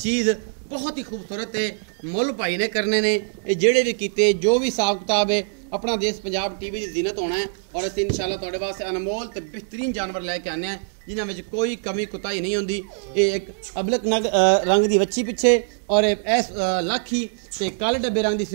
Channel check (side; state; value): left; silent; digital silence